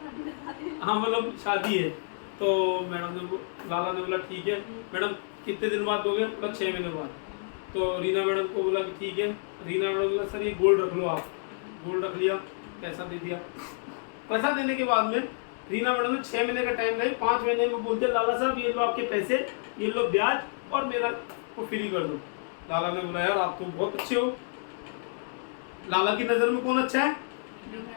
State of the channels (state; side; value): silent; right; digital silence